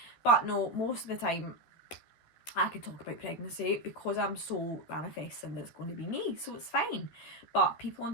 But no, most of the time I can talk about pregnancy because I'm so manifesting that it's going to be me, so it's fine. But people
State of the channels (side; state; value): right; late; 13 ms